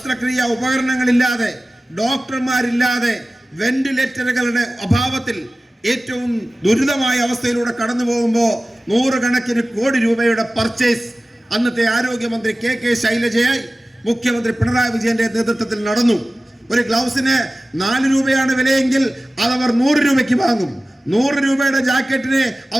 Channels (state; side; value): normal; both; correlation 0.96